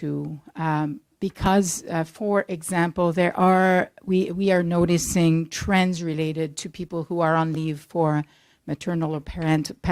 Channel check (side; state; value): both; identical; correlation 1.00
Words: because, for example, we are noticing trends related to people who are on leave for maternal or